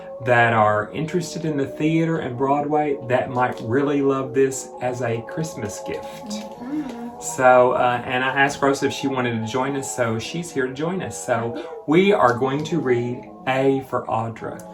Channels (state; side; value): identical; both; correlation 1.00